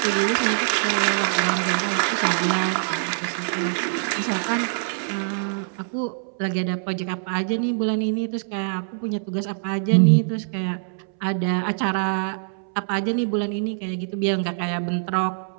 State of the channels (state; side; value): silent; left; 63 dB below the other